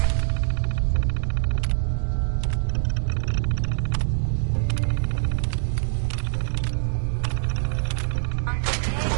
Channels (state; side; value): silent; left; 62 dB below the other